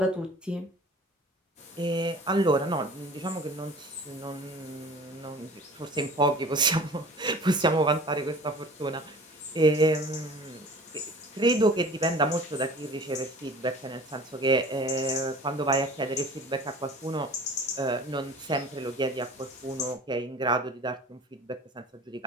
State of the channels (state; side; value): normal; both; correlation 0.43